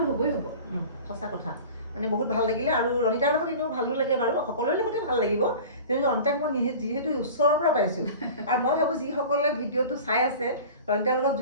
হ'বই হ'ব। সঁচা কথা, মানে বহুত ভাল লাগিলে। আৰু ৰণিতাৰ লগত এনেও ভালো লাগে বাৰু, সকলোৰে লগতে ভাল লাগিব, কিন্তু ৰণিতাক মই যিহেতু ওচৰৰ পৰা পাইছোঁ, আৰু মই ভাবোঁ যিসকলে ভিডিঅ'টো চাই আছে ৰণিতাৰ লগত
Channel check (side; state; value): both; inverted; correlation -0.38